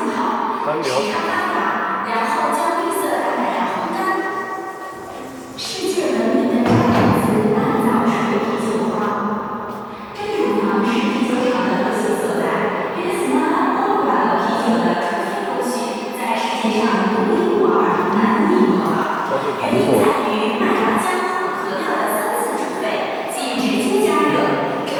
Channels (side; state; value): both; identical; correlation 1.00